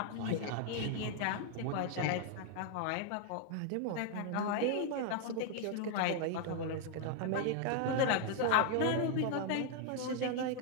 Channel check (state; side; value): different; both; correlation 0.00